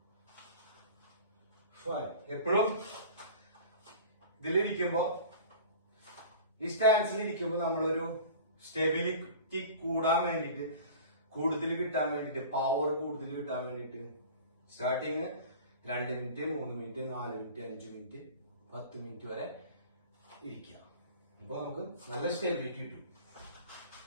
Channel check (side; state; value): both; inverted; correlation -0.40